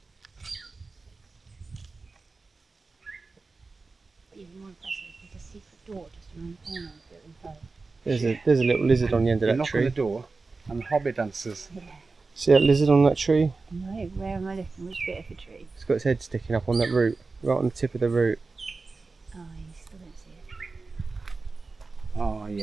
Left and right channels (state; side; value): quieter; left; 3.9 dB